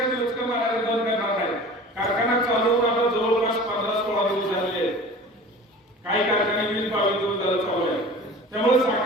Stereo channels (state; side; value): normal; both; correlation 0.40